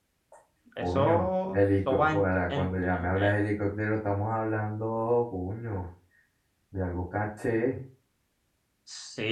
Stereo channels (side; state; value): both; identical; correlation 1.00